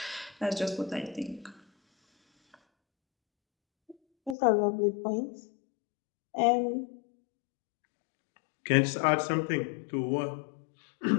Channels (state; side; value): drops out; right; at 4.4 s